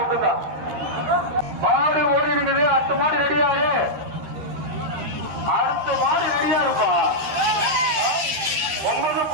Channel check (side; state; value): left; late; 13 ms